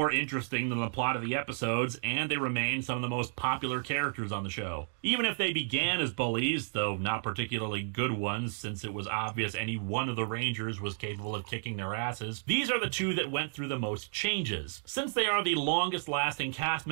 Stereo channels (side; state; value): left; silent; digital silence